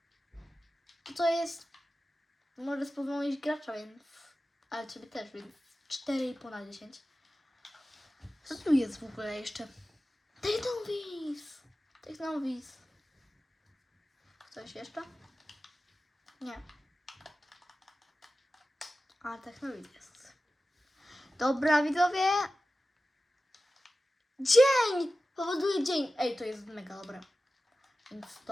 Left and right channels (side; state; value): both; normal; correlation 0.95